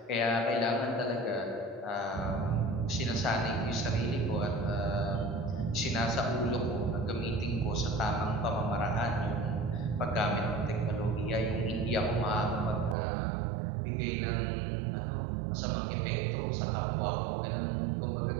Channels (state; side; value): drops out; left; at 13.0 s